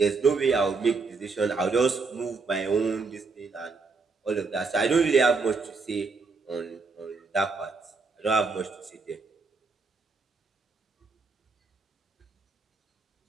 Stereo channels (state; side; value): quieter; left; 4.3 dB